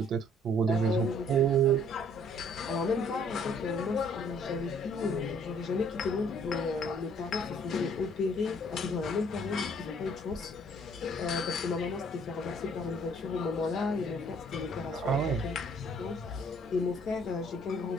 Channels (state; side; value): normal; both; correlation 0.60